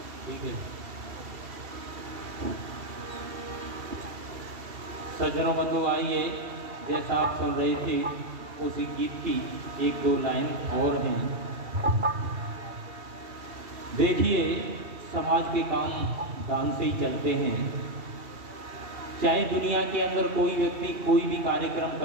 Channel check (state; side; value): late; left; 2.7 ms